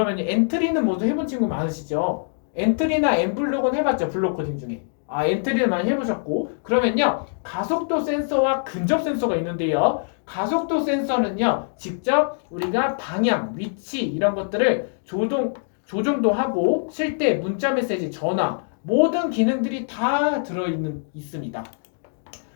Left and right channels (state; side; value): silent; right; digital silence